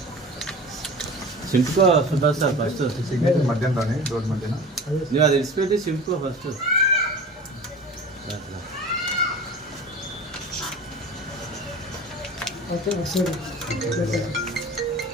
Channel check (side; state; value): both; normal; correlation 0.37